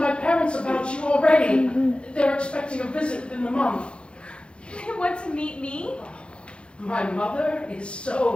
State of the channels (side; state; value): right; late; 0.057 ms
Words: my parents about you already. They're expecting a visit within the month. You want to meet me? My mother is